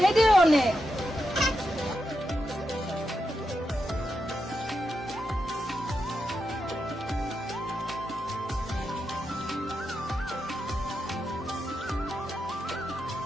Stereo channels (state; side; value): normal; both; correlation 0.86